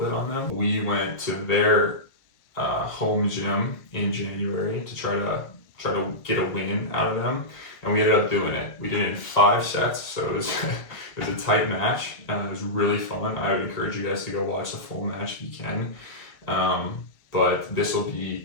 on them. We went to their home gym in January to try to get a win out of them, and we ended up doing it. We did it in 5 sets, so it was it was a tight match. It was really fun. I would encourage you guys to go watch the full match if you can. But this will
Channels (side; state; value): right; late; 1.8 ms